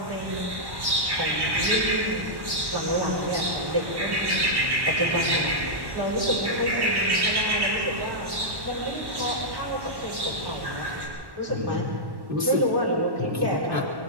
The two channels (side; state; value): left; late; 1.1 ms